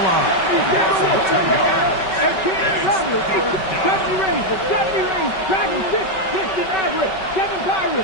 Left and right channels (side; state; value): right; late; 5.3 ms